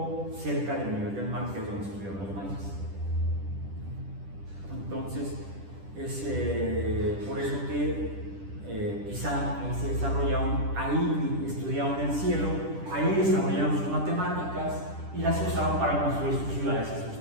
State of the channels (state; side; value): late; left; 10 ms